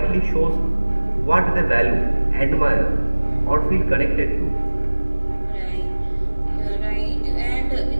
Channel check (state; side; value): inverted; both; correlation -1.00